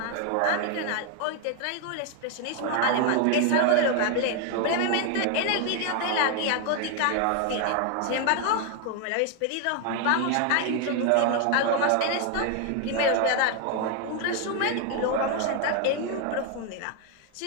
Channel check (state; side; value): different; both; correlation 0.00